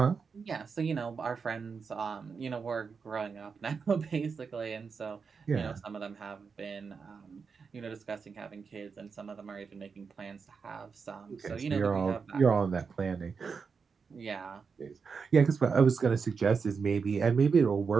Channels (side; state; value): left; quieter; 5.5 dB